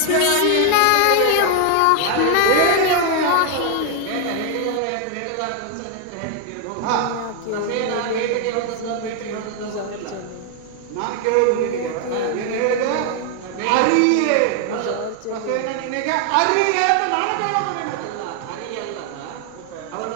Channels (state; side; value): different; both; correlation 0.00